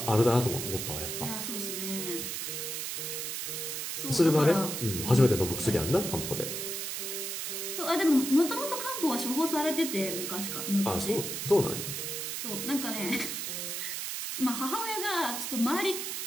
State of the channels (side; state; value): right; noise; hiss, 4 dB below the sound